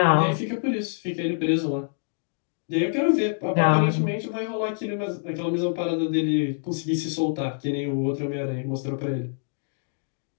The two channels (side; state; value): right; silent; digital silence